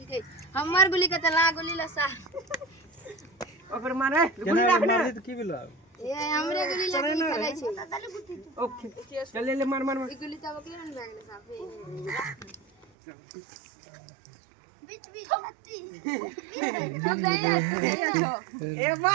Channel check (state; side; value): drops out; left; at 12.9 s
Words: गई हमर गोली के तला गोली लसा ओकर मारे गोली राखने मारी तो की भेलो ए हमरे गोली लगी खेलै छै ओके चल ले मार मार ई गोली तब के रन लागले साफे बीच बीच लत्ती ए